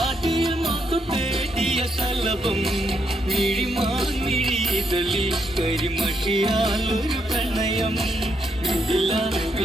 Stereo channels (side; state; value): both; normal; correlation 0.77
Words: മാത്തു തേടിയ ശലഭം, മിഴിമാങ്ങിഴിതളിൽ കരിമഷിയാൽ ഒരു പ്രണയം.